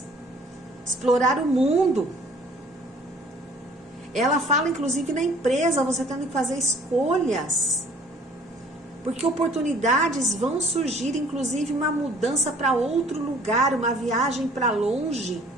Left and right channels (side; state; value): both; normal; correlation 0.55